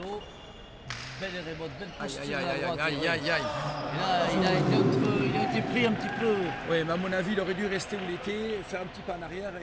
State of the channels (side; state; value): both; identical; correlation 1.00